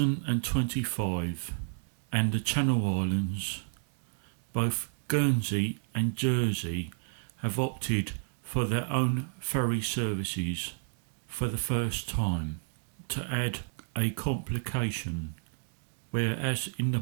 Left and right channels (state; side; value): silent; left; digital silence